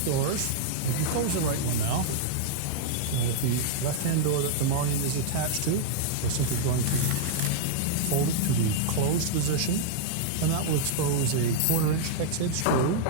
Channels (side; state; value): both; different; correlation -0.01